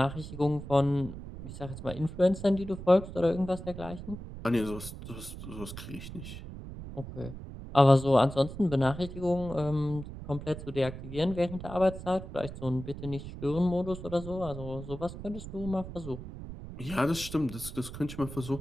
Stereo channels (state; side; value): noise; right; rumble, 11 dB below the sound